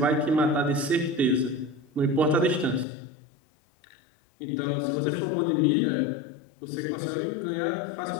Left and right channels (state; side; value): drops out; right; at 2.9 s